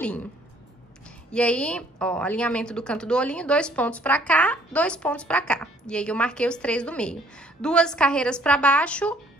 E aí, ó, alinhamento do canto do olhinho, 2 pontos pra cá, 2 pontos pra cá. E aí, eu marquei os 3 do meio. 2 carreiras pra baixo,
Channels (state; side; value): normal; both; correlation 0.60